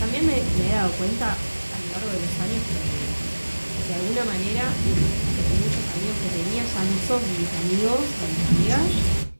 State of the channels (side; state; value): both; inverted; correlation -1.00